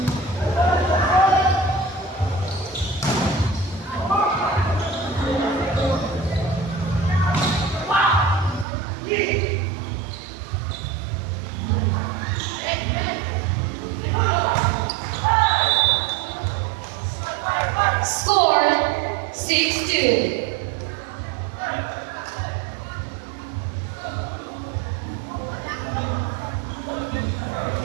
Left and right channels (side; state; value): left; drops out; at 8.7 s